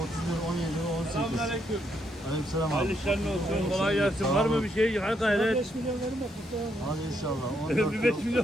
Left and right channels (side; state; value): both; normal; correlation 0.76